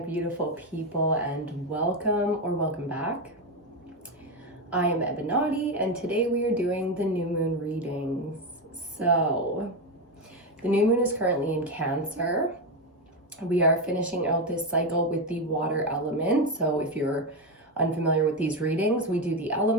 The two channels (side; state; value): both; normal; correlation 0.11